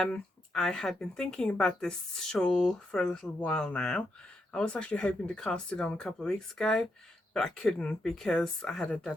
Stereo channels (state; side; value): normal; both; correlation 0.82